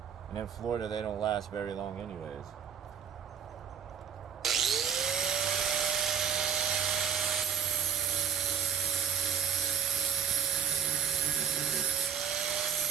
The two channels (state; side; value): quieter; left; 8.6 dB